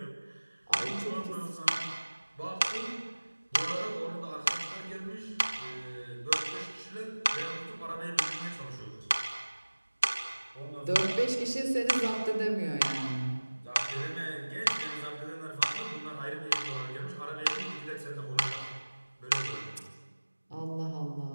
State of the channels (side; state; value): both; inverted; correlation -1.00